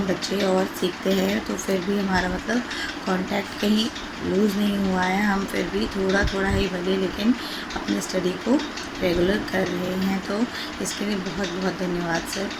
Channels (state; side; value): identical; both; correlation 1.00